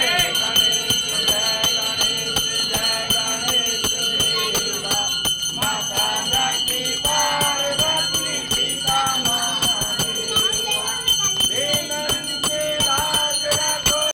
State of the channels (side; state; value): both; identical; correlation 1.00